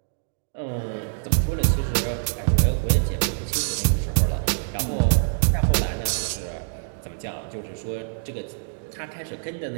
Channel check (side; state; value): left; silent; digital silence